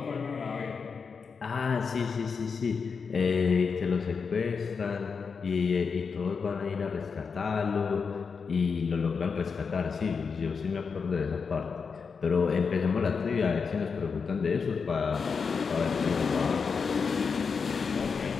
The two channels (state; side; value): quieter; right; 5.5 dB